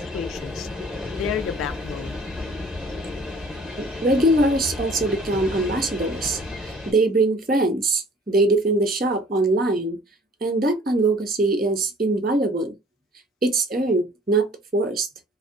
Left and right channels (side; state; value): both; normal; correlation 0.52